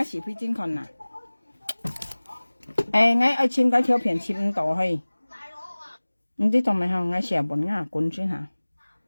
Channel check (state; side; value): inverted; both; correlation -1.00